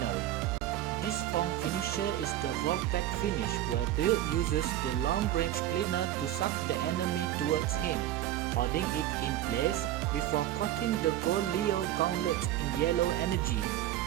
This form finisher is the Vortex finish, where Bill uses the long-range cleaner to suck the enemy towards him, holding it in place before coating the gold Leo gauntlet in yellow energy,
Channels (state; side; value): quieter; left; 13.2 dB